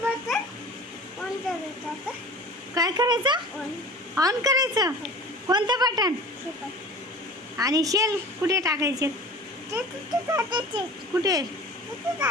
काय करायचं? ऑन करायचं. कोणतं बटन? आणि शेल कुठे टाकायचे? कुठे?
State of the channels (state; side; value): normal; both; correlation 0.40